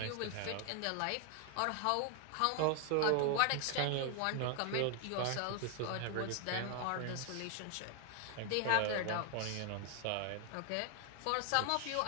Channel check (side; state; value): both; different; correlation 0.00